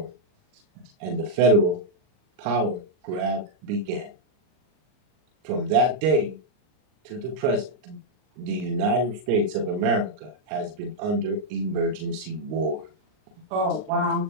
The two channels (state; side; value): late; left; 39 ms